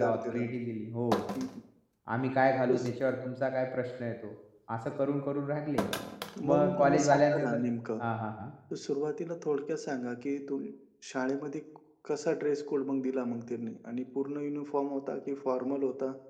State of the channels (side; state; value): both; identical; correlation 1.00